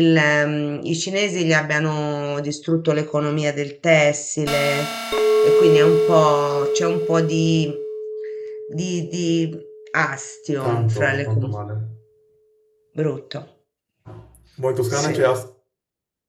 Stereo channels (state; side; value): identical; both; correlation 1.00